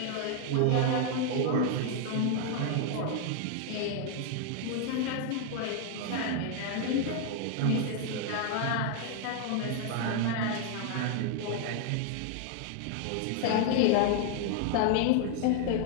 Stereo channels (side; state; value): both; different; correlation 0.00